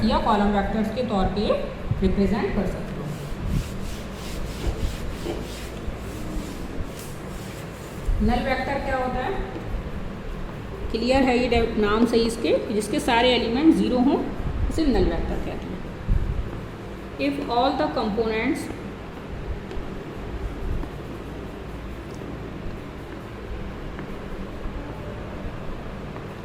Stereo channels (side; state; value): both; identical; correlation 1.00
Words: या कॉलम वेक्टर्स के तौर पे रिप्रेजेंट कर सकते हो। नल वेक्टर क्या होता है, क्लियर है ये नाम सही इसके, जिसके सारे एलिमेंट 0 हों उसे नल वेक्टर कहते हैं। If all the components